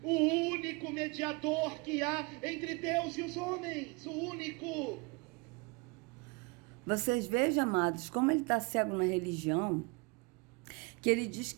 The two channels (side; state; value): left; quieter; 29.2 dB